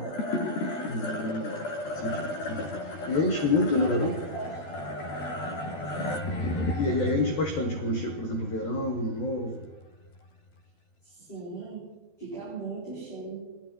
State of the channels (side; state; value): right; late; 12 ms